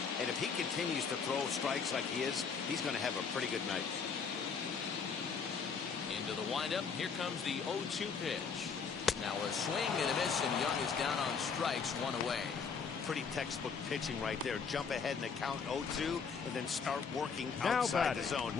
and if he continues to throw strikes like he is, he's going to have a pretty good night. Into the windup. Here comes the 0-2 pitch. Now a swing and a miss, and Young is down on strikes, 1 away. Pretty textbook pitching right there. Jump ahead in the count 0-2 and then start working Now outside batting, the zone.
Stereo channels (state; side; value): quieter; right; 5.8 dB